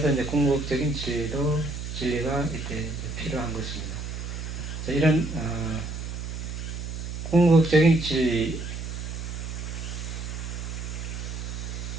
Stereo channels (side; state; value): right; noise; hum, 6 dB below the sound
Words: 이제 궁극적인 진리가 이때 필요한 것입니다. 이런 궁극적인 진리,